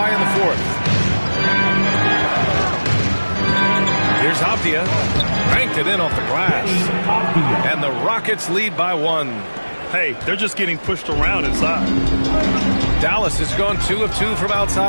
in the fourth. Here's Avdia. Banked it in off the glass. And the Rockets lead by 1. Hey, they're just getting pushed around inside. Dallas has gone 2 of 2 from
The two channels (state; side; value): inverted; both; correlation -1.00